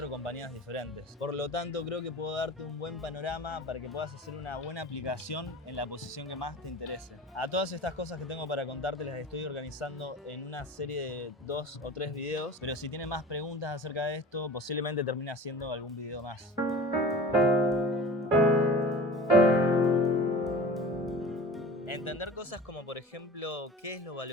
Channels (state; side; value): normal; both; correlation 0.38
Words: compañías diferentes. Por lo tanto, creo que puedo darte un buen panorama para que puedas hacer una buena aplicación en la posición que más te interese. A todas estas cosas que tengo para contarte las estoy organizando en una serie de 2 o 3 videos, pero si tienes más preguntas acerca de esto, posiblemente termine haciendo algún video más. Entender cosas como, por ejemplo, qué es lo